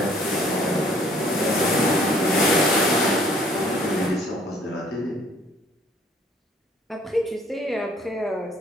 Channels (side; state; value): both; normal; correlation 0.59